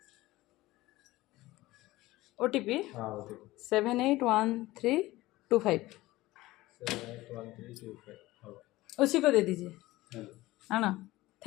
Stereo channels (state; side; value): quieter; right; 18.2 dB